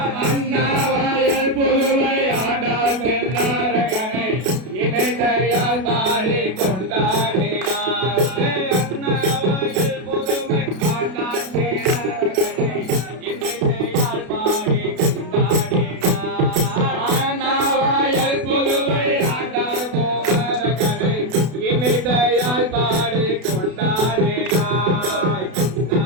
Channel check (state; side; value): late; left; 32 ms